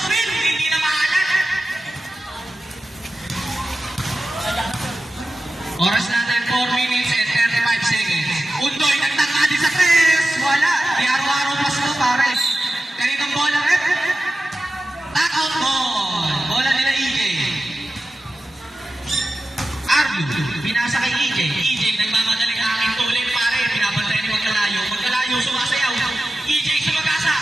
rin. Hindi na maalat. Oras natin, 4 minutes and 35 seconds. Undoy, nagtaka din sa press. Wala. Di araw-araw pa sila, pares. Kaninong bola, rep? Tack-out ball. Bola nila EJ. Arlo, binasa kay EJ. EJ, nagmamadaling aking tuloy, pare. Pinapantay ni Magkalayo. Magkalayo, sumasayaw. EJ, sumagasa.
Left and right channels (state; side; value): normal; both; correlation 0.93